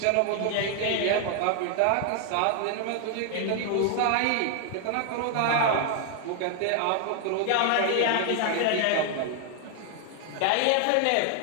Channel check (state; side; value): different; both; correlation 0.00